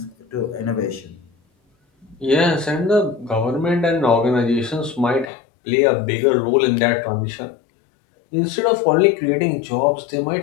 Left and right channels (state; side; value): drops out; right; at 5.3 s